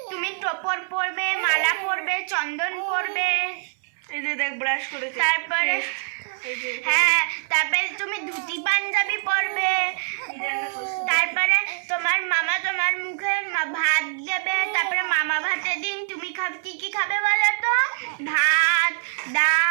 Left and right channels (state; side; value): silent; left; 62 dB below the other